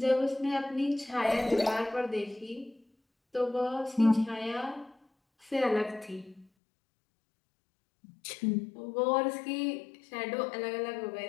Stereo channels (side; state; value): right; drops out; at 6.5 s